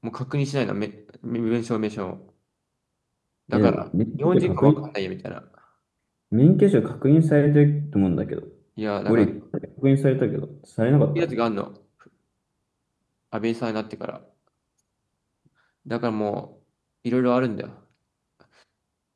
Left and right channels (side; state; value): both; identical; correlation 1.00